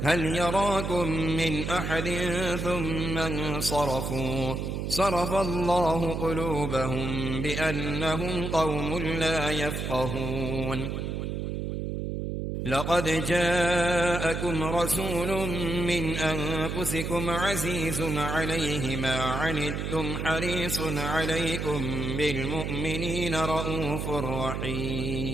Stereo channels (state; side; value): noise; right; hum, 3 dB below the sound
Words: هل يراكم من أحد ثم انصرفوا صرف الله قلوبهم بأنهم قوم لا يفقهون لقد جاءكم رسول من أنفسكم عزيز عليه ما عنتم حريص عليكم بالمؤمنين رءوف